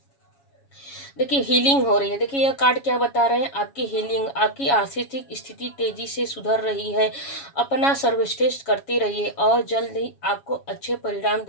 देखिए हीलिंग हो रही है। देखिए यह कार्ड क्या बता रहे हैं, आपकी हीलिंग, आपकी आर्थिक स्थिति तेजी से सुधर रही है। अपना सर्वश्रेष्ठ करते रहिए और जल्द ही आपको अच्छे परिणाम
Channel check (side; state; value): right; late; 7.2 ms